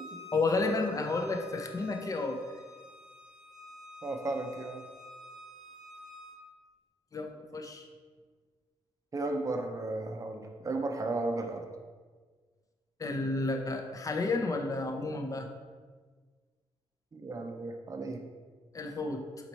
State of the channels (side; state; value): both; normal; correlation 0.70